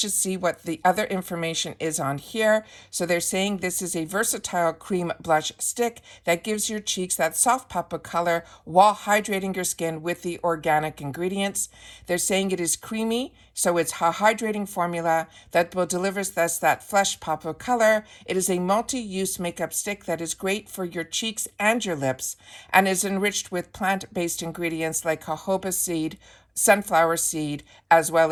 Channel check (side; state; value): both; identical; correlation 1.00